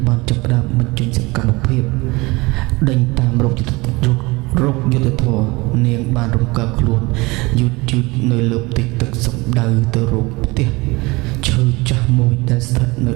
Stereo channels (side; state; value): left; quieter; 23.5 dB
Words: បានចាប់ផ្ដើមបញ្ចេញសកម្មភាពដេញតាមរោគយុទ្ធធម៌នាងបានរំកិលខ្លួនយឺតនៅលើផ្ទៃទឹកសំដៅទៅរកផ្ទះឈើចាស់មួយដែលស្ថិតនៅ